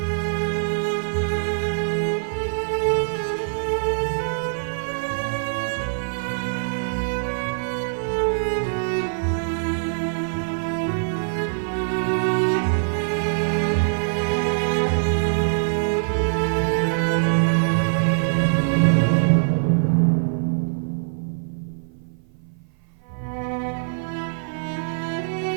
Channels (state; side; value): silent; left; 58 dB below the other